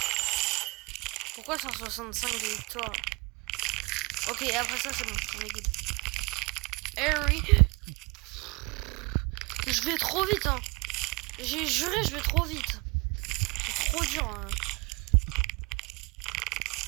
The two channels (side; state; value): left; quieter; 28.0 dB